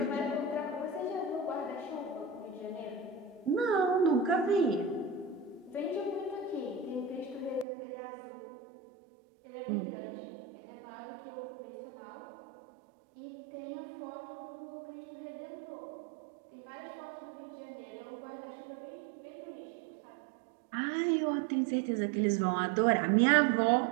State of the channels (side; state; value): left; drops out; at 7.7 s